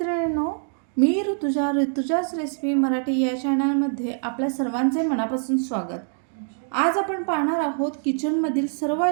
मी ऋतुजाच रेसिपी मराठी या चॅनलमध्ये आपल्या सर्वांचे मनापासून स्वागत. आज आपण पाहणार आहोत किचनमधील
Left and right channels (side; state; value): left; silent; digital silence